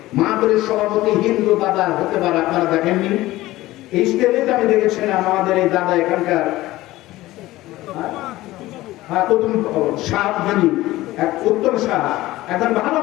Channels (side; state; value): right; quieter; 17.2 dB